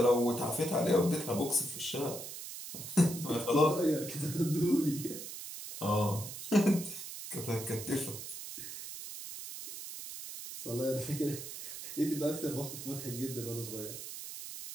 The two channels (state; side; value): noise; right; hiss, 9 dB below the sound